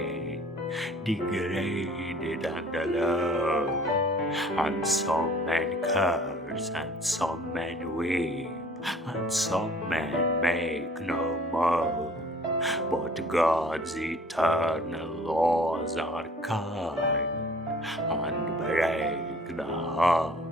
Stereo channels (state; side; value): normal; both; correlation 0.52